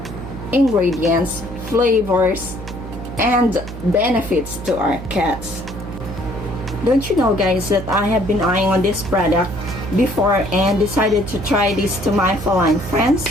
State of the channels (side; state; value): right; noise; hum, 10 dB below the sound